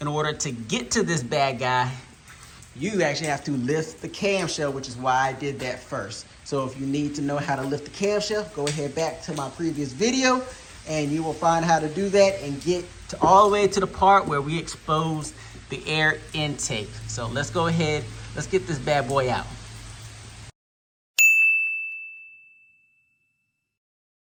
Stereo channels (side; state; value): both; identical; correlation 1.00